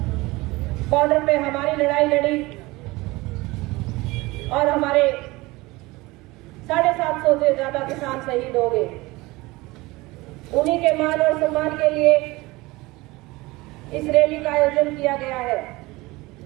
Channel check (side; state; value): left; quieter; 21.5 dB